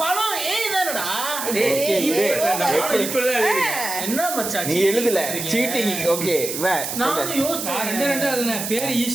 பழம் ஏய் தானடா. ஓகே இப்பதான் என்ன மச்சான் நீ எழுதல சீட்டிங். ஓகே வே நான் சொல்லு. யோசிச்சேன். ரெண்டு அதுன பேர்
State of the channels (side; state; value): right; noise; hiss, 5 dB below the sound